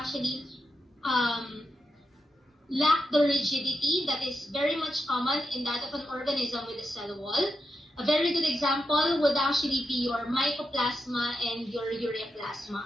lack the rigidity that is very much common in that of an organism with a cell wall. A very good example would actually be your Mycoplasma and your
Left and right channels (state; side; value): normal; both; correlation 0.86